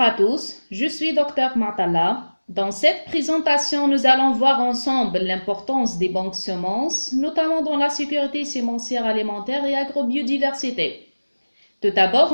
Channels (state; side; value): inverted; both; correlation -1.00